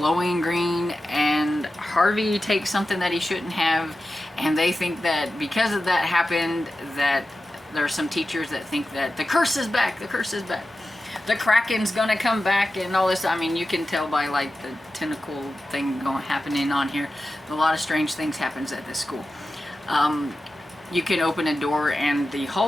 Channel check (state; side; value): normal; both; correlation 0.93